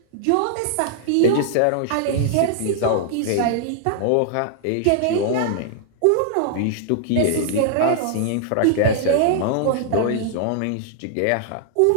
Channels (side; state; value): both; different; correlation -0.01